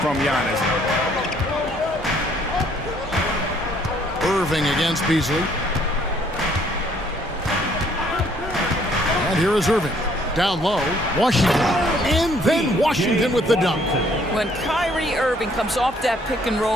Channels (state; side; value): normal; both; correlation 0.64